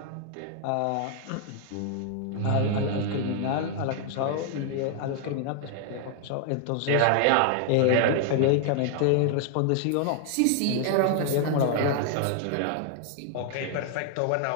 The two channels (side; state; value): both; different; correlation 0.00